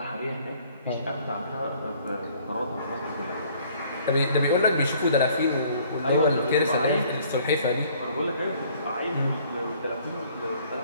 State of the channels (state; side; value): inverted; both; correlation -0.58